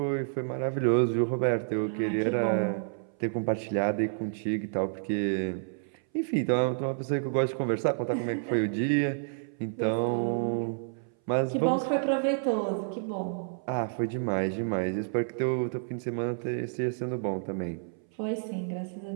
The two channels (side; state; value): left; silent; 58 dB below the other